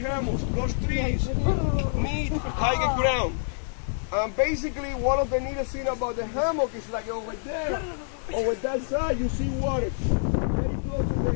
those trees need higher ground. And basically one of the neatest things about the hammock is like over there, over that side you see water. Very close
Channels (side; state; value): right; silent; digital silence